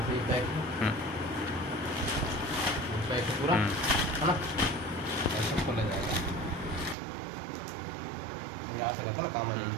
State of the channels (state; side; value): drops out; left; at 7.0 s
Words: पे बैक है, बैक है पूरा, है ना, ऐसा खोला जाएगा। यहाँ से रहता ना काम